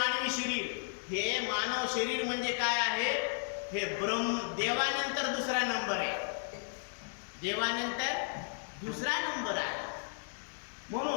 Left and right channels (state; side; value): silent; right; digital silence